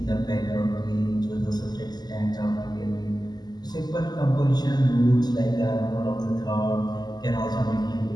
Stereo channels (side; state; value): right; late; 0.20 ms